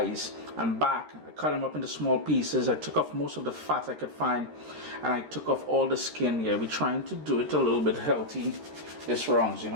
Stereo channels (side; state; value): left; late; 13 ms